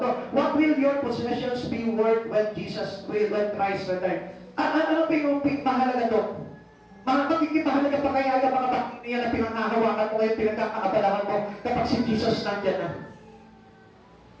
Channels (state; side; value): identical; both; correlation 1.00